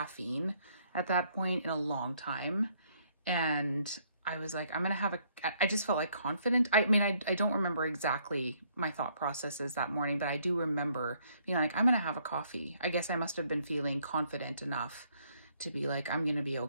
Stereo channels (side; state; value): both; inverted; correlation -0.67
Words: at that point in a long time. And I was like, I just felt like confident. I mean, I don't remember exactly my thought processes that morning, but I do remember being like, I'm going to have a coffee. I guess I must have been feeling confident enough to be like, I'm going to be